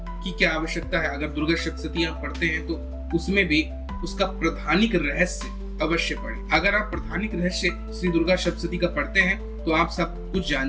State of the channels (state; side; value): identical; both; correlation 1.00